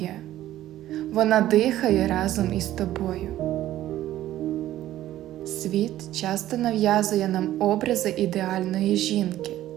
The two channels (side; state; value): left; quieter; 13.7 dB